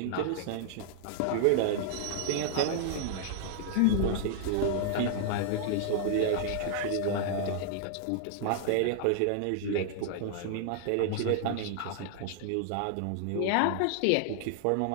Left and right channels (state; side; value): different; both; correlation 0.00